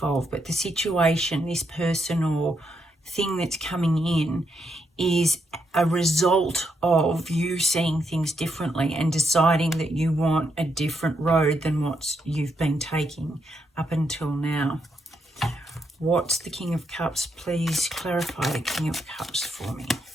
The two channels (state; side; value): normal; both; correlation 0.80